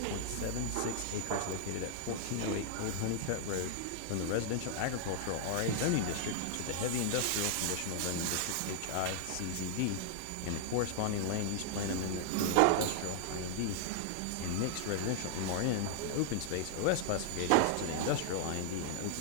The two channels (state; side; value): different; both; correlation 0.00